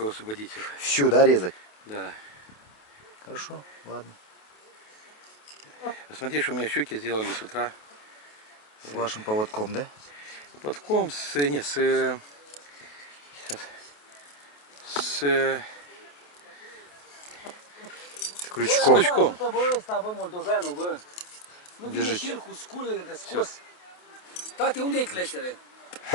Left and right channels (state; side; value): late; right; 28 ms